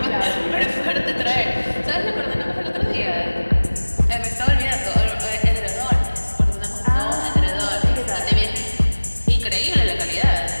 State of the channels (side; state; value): both; inverted; correlation -1.00